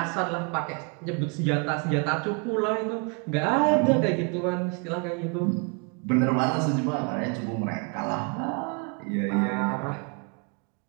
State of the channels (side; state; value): left; quieter; 34.5 dB